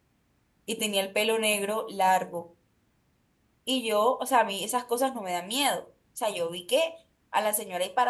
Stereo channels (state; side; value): identical; both; correlation 1.00